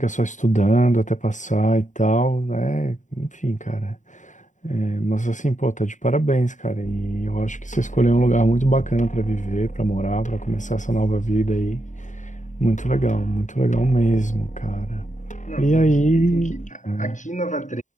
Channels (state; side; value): late; right; 0.36 ms